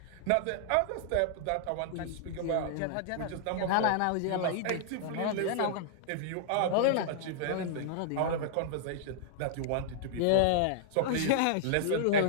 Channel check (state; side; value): different; both; correlation -0.01